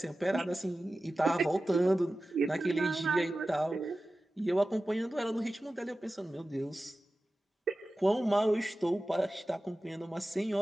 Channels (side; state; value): both; normal; correlation 0.95